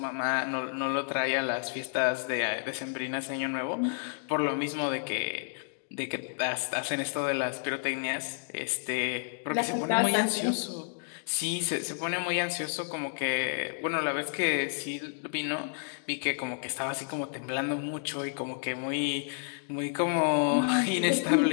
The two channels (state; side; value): silent; right; digital silence